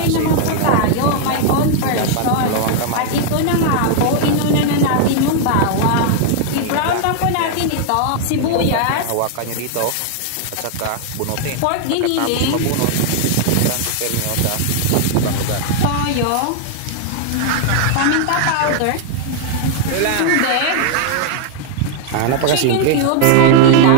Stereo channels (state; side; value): different; both; correlation 0.00